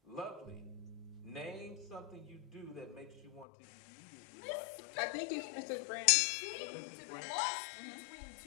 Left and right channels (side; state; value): right; drops out; at 3.5 s